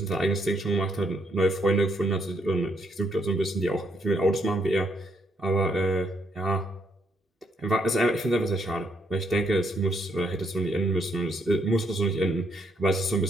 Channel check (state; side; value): normal; both; correlation 0.73